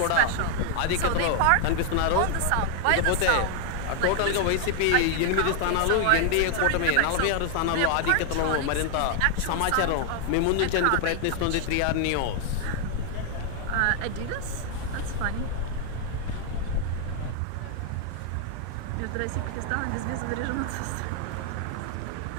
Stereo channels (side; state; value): both; different; correlation 0.00